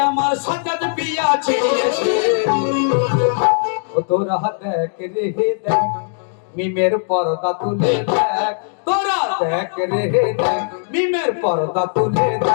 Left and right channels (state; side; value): silent; right; digital silence